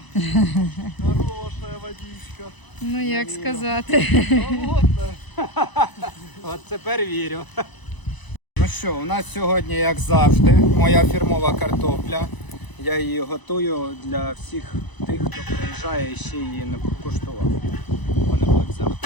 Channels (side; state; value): right; late; 1.0 ms